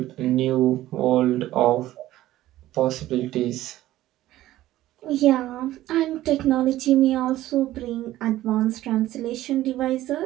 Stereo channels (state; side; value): quieter; left; 15.0 dB